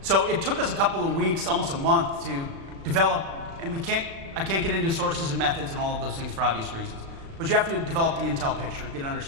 So it took us a couple of weeks, almost a month, to develop, and I can't get into sources and methods and all of those things for obvious reasons, but you have to develop the intel picture, get an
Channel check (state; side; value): late; left; 36 ms